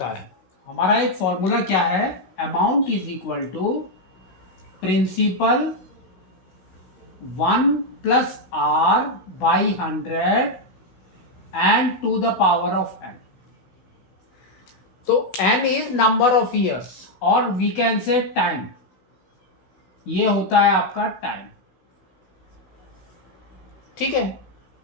है, हमारा एक फॉर्मूला क्या है, amount is equal to principal 1 plus R by 100 and to the power of n। तो n is number of years और वी कैन से टाइम, ये होता है आपका टाइम। ठीक है,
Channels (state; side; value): late; right; 16 ms